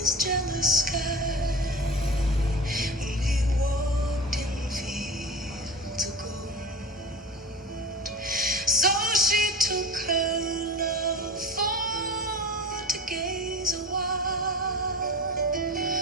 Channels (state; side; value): normal; both; correlation 0.31